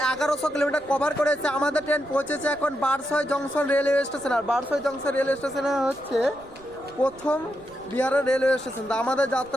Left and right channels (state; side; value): noise; right; rumble, 25 dB below the sound